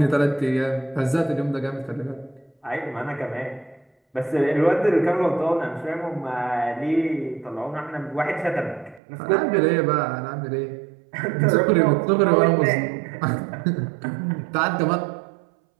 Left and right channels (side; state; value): left; drops out; at 9.0 s